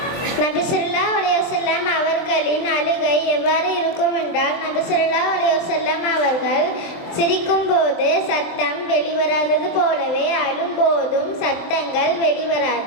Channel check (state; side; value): late; right; 23 ms